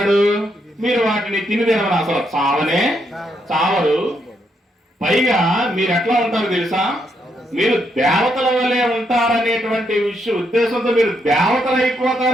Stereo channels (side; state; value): both; normal; correlation 0.78